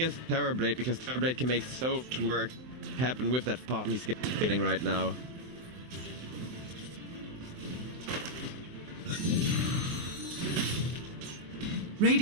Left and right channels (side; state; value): left; late; 23 ms